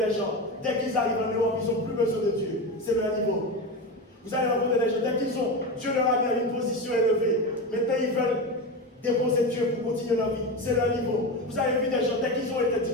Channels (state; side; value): normal; both; correlation 0.20